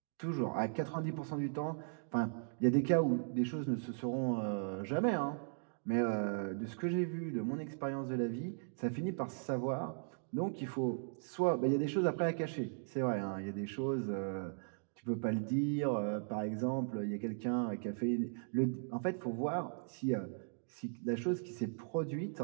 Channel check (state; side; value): silent; left; digital silence